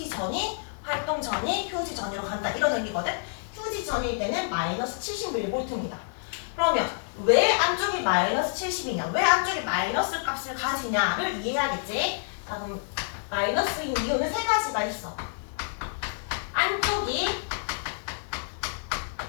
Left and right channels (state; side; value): silent; right; digital silence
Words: 전이, 활동 전이, 휴지 전이로 간다 이런 의미거든. 휴지 전일 때는 마이너스 70mV입니다. 그러면 왜 안쪽이 마이너스 70이냐? 왜 안쪽이 마이너스 값을 가지냐를 이해해야겠지? 자, 그럼 마이너스인 이유는 세 가지가 있어. 안쪽이